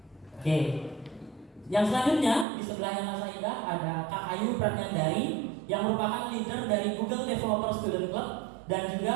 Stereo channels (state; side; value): drops out; left; at 2.5 s